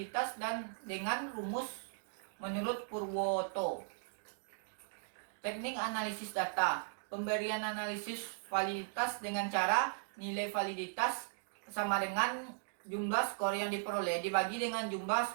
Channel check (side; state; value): left; silent; digital silence